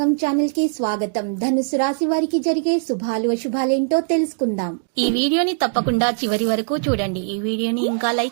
ఛానల్ కి స్వాగతం. ధనుసు రాశి వారికి జరిగే శుభాలు అశుభాలేంటో తెలుసుకుందాం. ఈ వీడియోని తప్పకుండా చివరి వరకు చూడండి. ఈ వీడియోని ఇంకా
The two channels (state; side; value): silent; left; digital silence